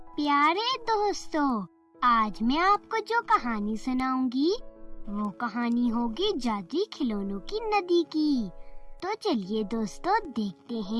प्यारे दोस्तों, आज मैं आपको जो कहानी सुनाऊंगी वो कहानी होगी जादुई खिलौनों की नदी की। तो चलिए दोस्तों, देखते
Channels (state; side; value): identical; both; correlation 1.00